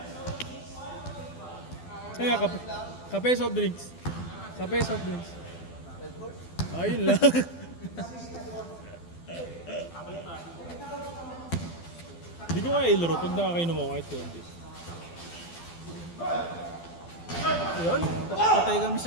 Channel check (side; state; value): right; late; 12 ms